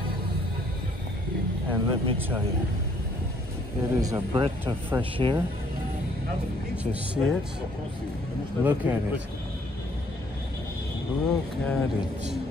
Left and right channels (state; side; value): normal; both; correlation 0.64